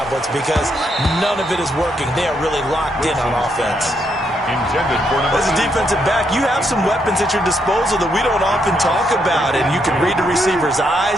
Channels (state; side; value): normal; both; correlation 0.77